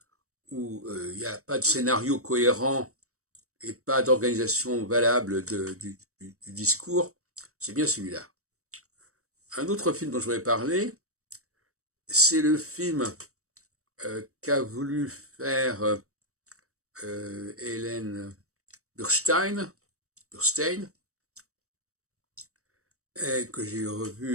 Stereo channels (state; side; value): late; left; 0.65 ms